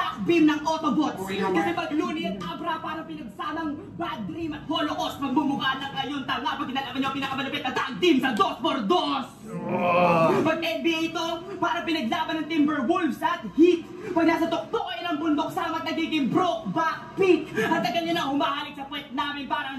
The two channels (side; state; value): both; identical; correlation 1.00